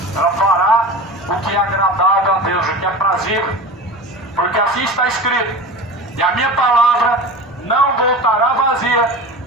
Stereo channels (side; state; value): both; normal; correlation 0.32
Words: ela fará o que é agradável a Deus, o que é prazível, porque assim está escrito: e a minha palavra não voltará vazia,